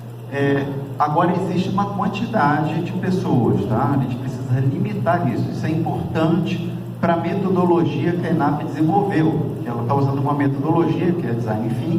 Agora existe uma quantidade de pessoas, tá? A gente precisa limitar isso. Isso é importante para a metodologia que a ENAP desenvolveu. Ela está usando uma metodologia que é Design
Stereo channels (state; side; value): identical; both; correlation 1.00